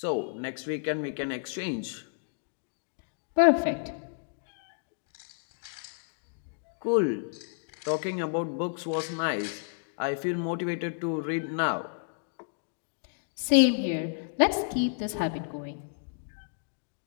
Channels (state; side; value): silent; right; digital silence